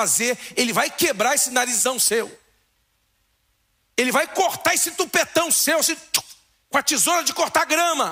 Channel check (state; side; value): identical; both; correlation 1.00